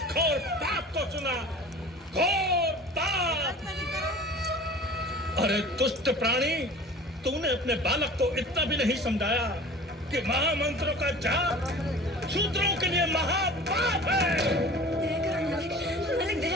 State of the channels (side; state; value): both; normal; correlation 0.41